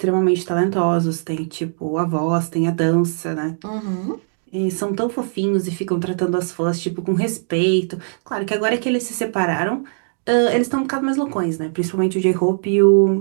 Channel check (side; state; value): left; silent; digital silence